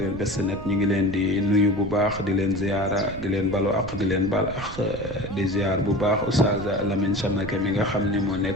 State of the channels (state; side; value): noise; right; rumble, 12 dB below the sound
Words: Best Net ñu ngi leen di nuyu bu baax di leen ziyaara di leen balu ak di leen bal ak di ziyaar bu baax Oustaz Lamine Samake mi nga xam ne moo